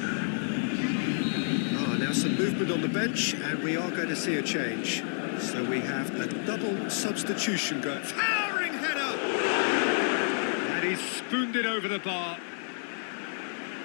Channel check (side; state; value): right; silent; 58 dB below the other